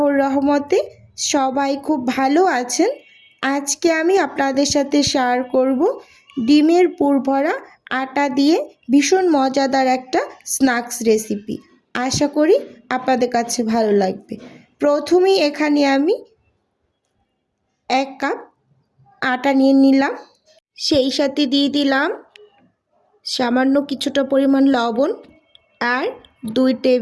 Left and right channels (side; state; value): both; identical; correlation 1.00